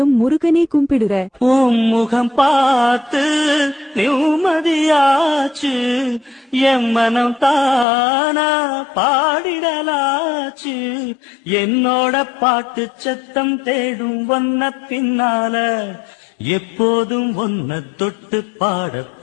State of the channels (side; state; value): right; drops out; at 7.9 s